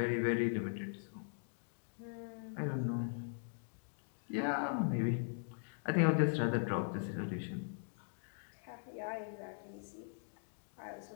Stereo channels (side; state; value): right; silent; digital silence